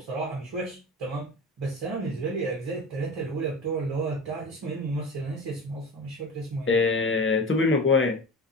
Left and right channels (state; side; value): normal; both; correlation 0.30